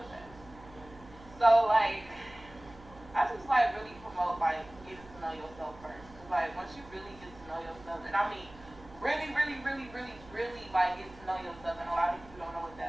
of that. So like, I just like really promote like getting to know yourself first. Cause like once you really get to know yourself, and I mean really like get to know yourself, and a lot of people don't know what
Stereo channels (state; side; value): noise; right; hum, 21 dB below the sound